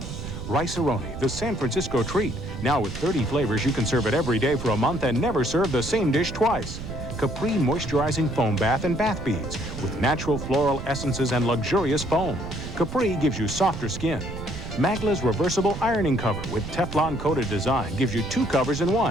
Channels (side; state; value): right; noise; rumble, 9 dB below the sound